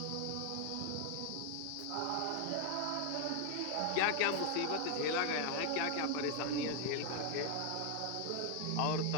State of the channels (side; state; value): both; different; correlation 0.00